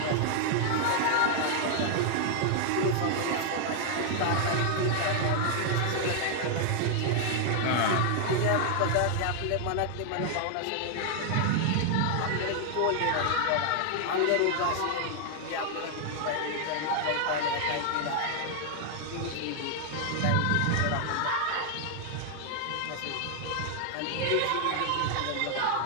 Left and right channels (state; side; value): different; both; correlation 0.00